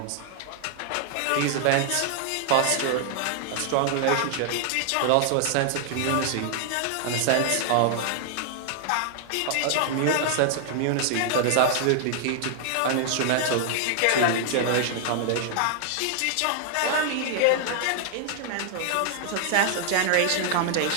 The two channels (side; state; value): both; different; correlation 0.00